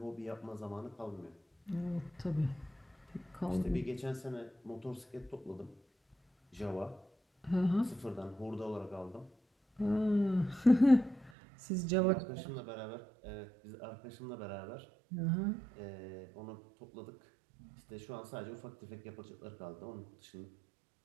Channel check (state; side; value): drops out; left; at 11.3 s